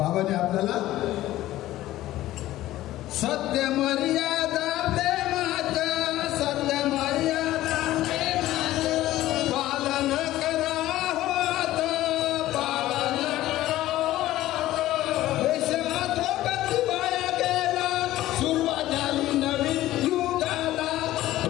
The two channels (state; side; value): quieter; right; 15.2 dB